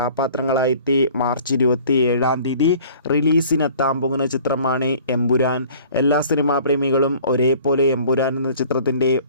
മാർച്ച് 27 റിലീസിനെത്താൻ പോകുന്ന ചിത്രമാണ് എമ്പുരാൻ. എല്ലാ സിനിമാ പ്രേമികളും ഒരേപോലെ എമ്പുരാൻ എന്ന ചിത്രത്തിൻ്റെ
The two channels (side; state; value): both; inverted; correlation -0.50